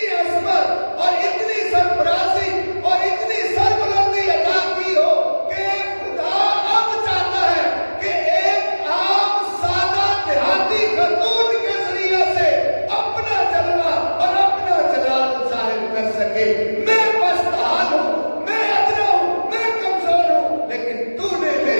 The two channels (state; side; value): inverted; both; correlation -1.00